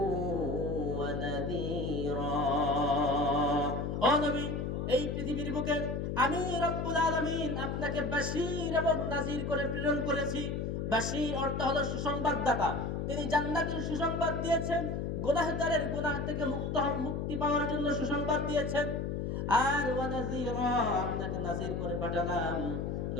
ওয়া নাযীরা। ও নবী, এই পৃথিবীর বুকে আমি রব্বুল আলামিন আপনাকে বাশীর এবং নাযীর করে প্রেরণ করেছি। বাশীর অর্থ হলো সুসংবাদদাতা, তিনি জান্নাতের সুসংবাদ দিয়েছেন, গুনাহগারের গুনাহ থেকে মুক্তি পাওয়ার জন্য সুসংবাদ দিয়েছেন। আর ওয়া নাযীরা, আপনাকে নাযীর করে পাঠালাম।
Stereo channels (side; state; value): left; noise; hum, 2 dB below the sound